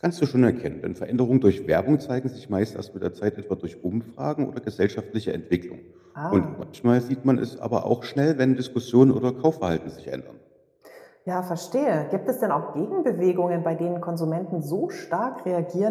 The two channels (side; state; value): both; identical; correlation 1.00